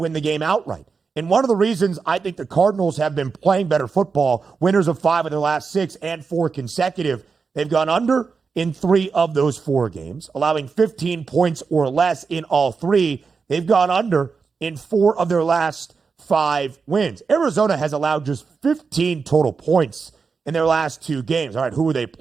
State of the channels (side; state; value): left; quieter; 5.1 dB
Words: the game outright. And one of the reasons I think the Cardinals have been playing better football, winners of 5 of their last 6 and 4 consecutive, they've gone under in 3 of those 4 games, allowing 15 points or less in all 3. They've gone under in 4 of their last 5 wins. Arizona has allowed just 15 total points in their last 2 games. All right, who are they